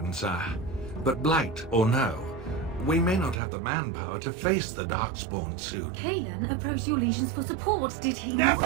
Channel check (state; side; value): drops out; left; at 3.4 s